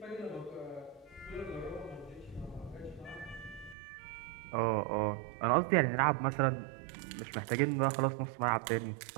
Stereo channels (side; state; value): left; drops out; at 3.8 s